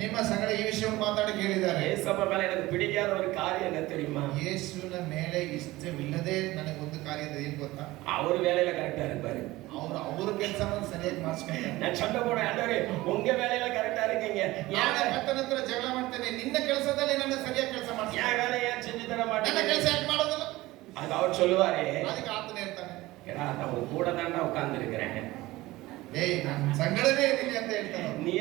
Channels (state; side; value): quieter; left; 18.7 dB